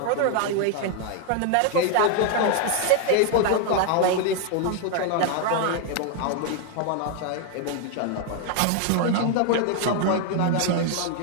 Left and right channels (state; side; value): different; both; correlation 0.00